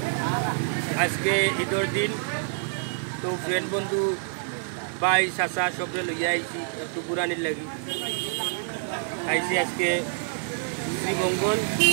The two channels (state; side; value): silent; left; digital silence